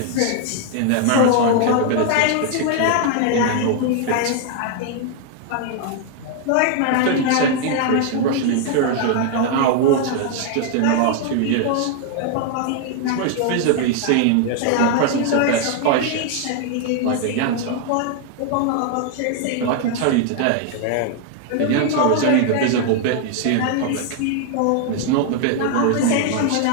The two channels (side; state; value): both; different; correlation 0.00